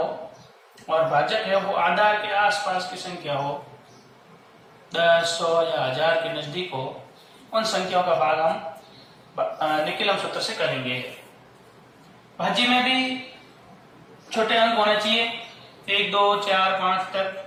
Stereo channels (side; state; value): both; identical; correlation 1.00